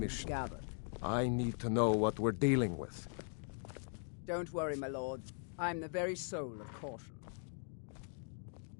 have mission. gathered. I need to know what we're dealing with. Don't worry, my lord. I'm the very soul of caution.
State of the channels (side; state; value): right; silent; 51 dB below the other